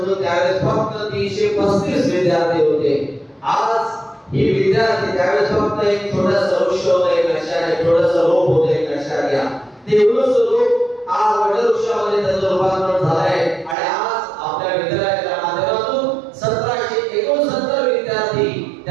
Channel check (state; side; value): drops out; left; at 13.8 s